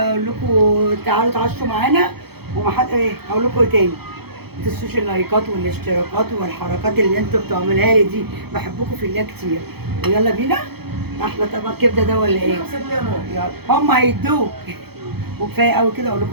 لكم تعالوا تعشوا معانا. ومحد ايه هقول لكم ايه تاني. ما تنسوش اللايكات والاشتراكات والحركات اللي انتوا بتعملوها لي دي. بحبكم في الله كتير. ويلا بينا. احلى طبق كبده ده ولا ايه؟ 5 جنيه يا ماما. يلا هم هيدوك. وكفايه قوي كده، اقول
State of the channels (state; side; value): late; left; 0.96 ms